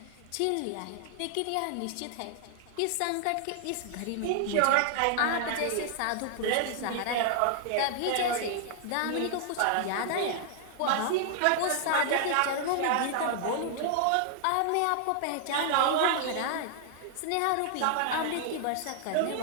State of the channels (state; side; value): different; both; correlation 0.00